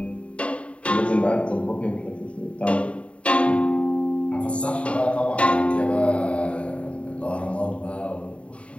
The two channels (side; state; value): right; late; 0.062 ms